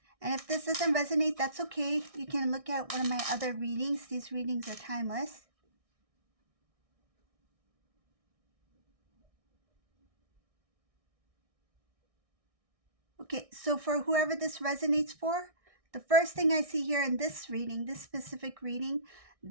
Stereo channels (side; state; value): left; late; 1.6 ms